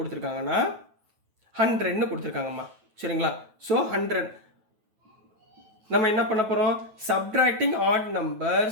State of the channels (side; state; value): left; late; 9.2 ms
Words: 100ன்னு கொடுத்துருக்காங்கம்மா. சரிங்களா, ஸோ 100 நம்ம என்ன பண்ண போகிறோம், சப்ட்ராக்டிங் ஆட்